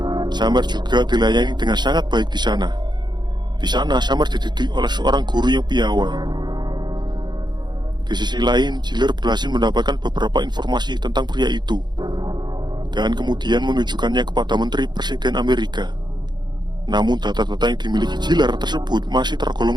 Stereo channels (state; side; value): late; left; 0.21 ms